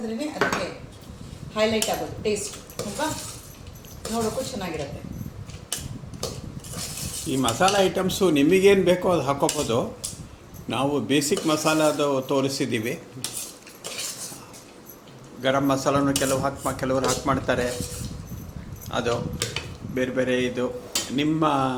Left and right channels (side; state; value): both; identical; correlation 1.00